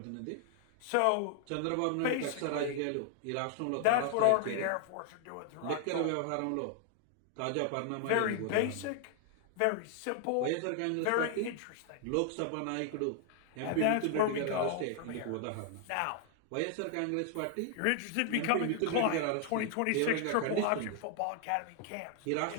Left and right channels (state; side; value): different; both; correlation 0.00